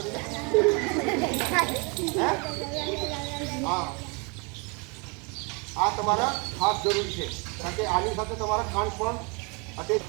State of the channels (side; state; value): left; quieter; 31.9 dB